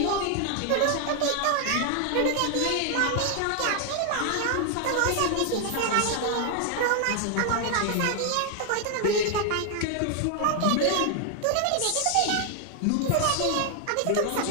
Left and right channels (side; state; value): both; different; correlation 0.00